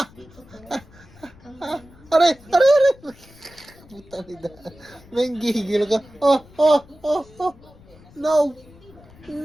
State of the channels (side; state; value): left; noise; rumble, 24 dB below the sound